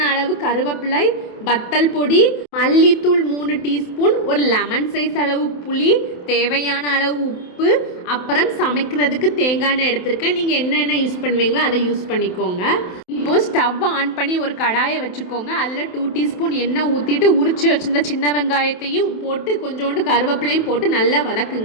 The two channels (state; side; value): late; right; 27 ms